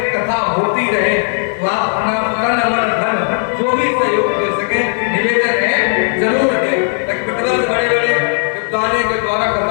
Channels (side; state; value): right; silent; 57 dB below the other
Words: कथा होती रहे, तो आप अपना तन मन धन जो भी सहयोग दे सके निवेदन है जरूर दें, ताकि प्रतिवर्ष बड़े बड़े विद्वानों के द्वारा